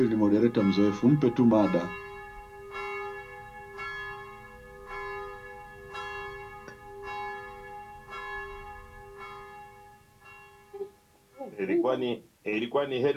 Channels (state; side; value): identical; both; correlation 1.00